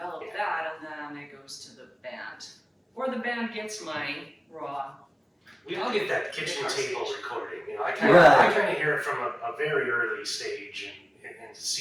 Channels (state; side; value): identical; both; correlation 1.00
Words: that, and then it goes to the band, or the band gets my raw. we all get that kitchen table recording. You know, I Right. kind of hear it from a very early stage and